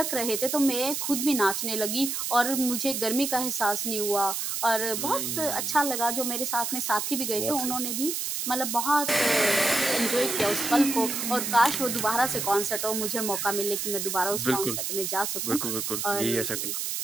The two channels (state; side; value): noise; right; hiss, 2 dB below the sound